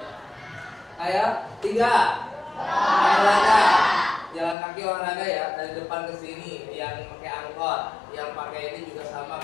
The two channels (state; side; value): drops out; right; at 4.5 s